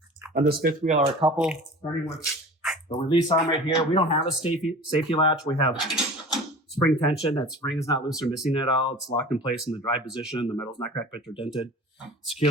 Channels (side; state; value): both; normal; correlation 0.39